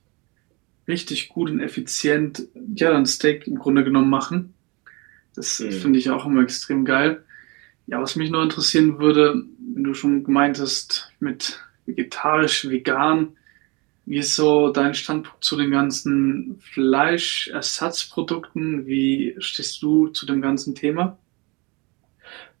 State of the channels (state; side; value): quieter; left; 27.7 dB